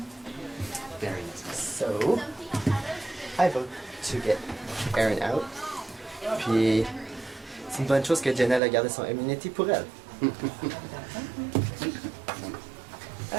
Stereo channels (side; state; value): left; drops out; at 8.6 s